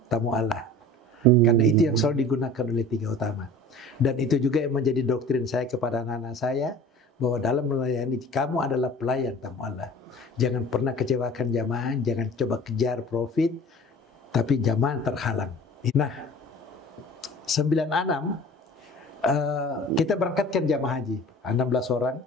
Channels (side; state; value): both; normal; correlation 0.42